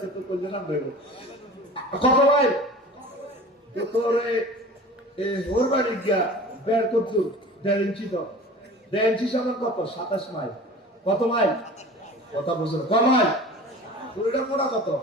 তো কইলে না দেব কত ভাই? তো তোরে ওর বাড়ি গিয়া বের করছু 1.5 ইঞ্চি। তো 1.5 ইঞ্চি সমান কত? 27 মাইল। কত মাইল? কথা বুঝলো? কত মাইল? পুরোটা মোড়া কত?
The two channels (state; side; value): normal; both; correlation 0.39